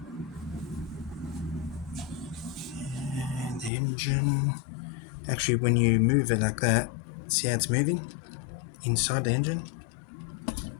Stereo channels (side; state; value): right; drops out; at 3.7 s